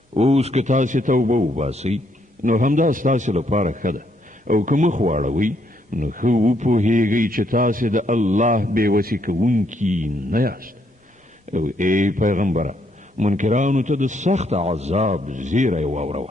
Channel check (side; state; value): both; normal; correlation 0.73